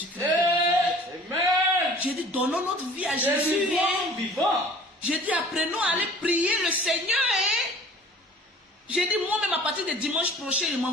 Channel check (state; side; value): normal; both; correlation 0.47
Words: Amen. J'ai dit, donnons notre vie à Jésus. Vivant. J'ai dit, apprenons à aller prier le Seigneur. J'ai dit, moi-même, à partir de dimanche prochain, je m'en